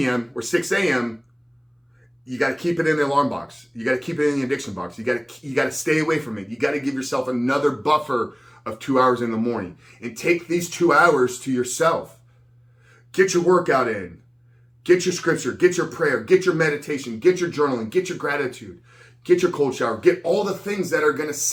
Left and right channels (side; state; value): both; identical; correlation 1.00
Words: or 6 a.m., you got to keep it in the alarm box. You got to keep it in the addiction box. You got to stay away from it. You got to give yourself another buffer of 2 hours in the morning, and take these 2 hours to yourself. Get your workout in, get your scripture, get your prayer, get your meditation, get your journaling, get your gratitude, get your cold shower, get all the things that are going to